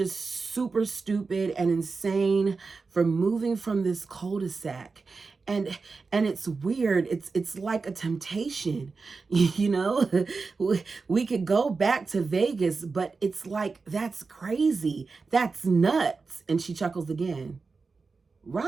super stupid and insane for moving from this cul-de-sac. And it's weird. It's like a temptation, we could go back to Vegas, but it's like, that's crazy. That's nuts. And she chuckles again.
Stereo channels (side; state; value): left; quieter; 4.4 dB